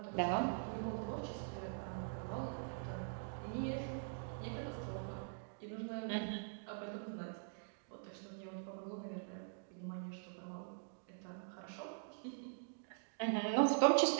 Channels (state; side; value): silent; left; digital silence